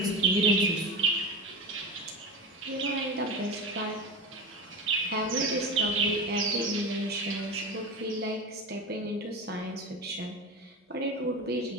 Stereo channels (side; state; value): both; normal; correlation 0.24